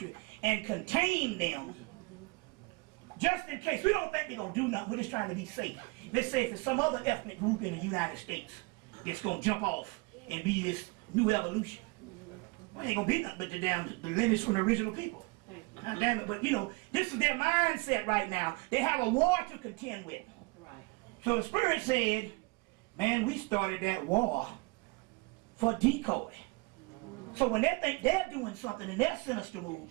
and contain them just in case. We don't think they're going to do nothing. We're just trying to be safe. Let's say if it's some other ethnic group in the United States that's going to jump off and be this new evolution. Well, ain't going to be nothing but the lineage from the original people. God damn it. But, you know, this is their mindset right now. They have a war to contend with. Right. So the Spirit said, man, we started that war for decoy. So when they think they're doing something and they're sinister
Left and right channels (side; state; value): left; quieter; 26.8 dB